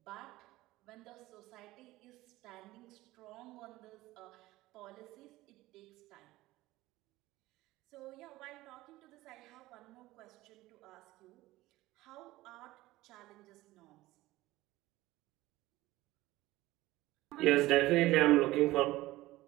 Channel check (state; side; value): quieter; left; 17.9 dB